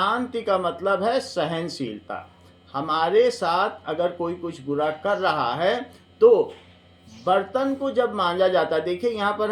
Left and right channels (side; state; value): both; identical; correlation 1.00